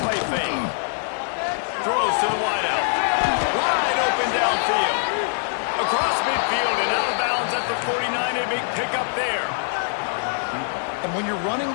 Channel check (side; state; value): right; silent; 63 dB below the other